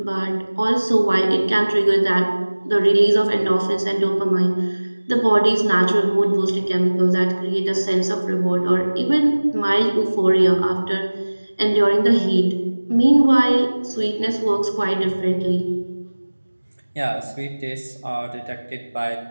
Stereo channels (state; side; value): inverted; both; correlation -1.00